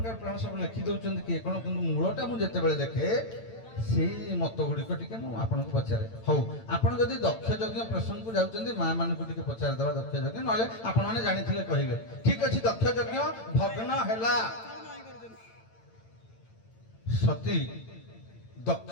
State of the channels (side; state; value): right; late; 8.9 ms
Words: ପୁରାଣ ସବୁ ଲେଖି ଦଉଛନ୍ତି କିଏ କ'ଣ, କିନ୍ତୁ ମୂଳଟା ମୁଁ ଯେତେବେଳେ ଦେଖେ ସେଇ ମତ ଗୁଡ଼ିକ ଟିକେ ମୁଁ ଆପଣଙ୍କୁ ପଚାରେ। ହଉ, ଆପଣ ଯଦି ଦକ୍ଷ ଯଜ୍ଞ ପ୍ରସଙ୍ଗକୁ ଯାଉଛନ୍ତି, ମା ମାନଙ୍କୁ ଟିକେ ପଚାରିଦେବା ଦକ୍ଷ ଯଜ୍ଞ, ନହେଲେ ଆପଣମାନେ ଜାଣିଥିଲେ କହିବେ। ଠିକ ଅଛି, ଦକ୍ଷ ଯଜ୍ଞ ଭଗ୍ନ ହେଲା। ସତୀ